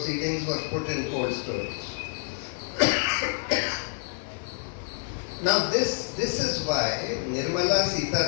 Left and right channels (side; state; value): right; silent; digital silence